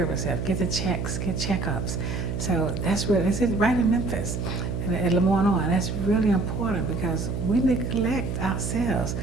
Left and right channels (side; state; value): right; noise; hum, 3 dB below the sound